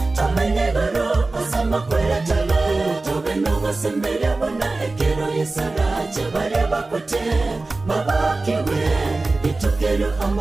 tamenye garo asamakwera tala. Tobeno gosembere bona ekero yesarache bareba kote babakiwe. Itukero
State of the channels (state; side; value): quieter; left; 3.3 dB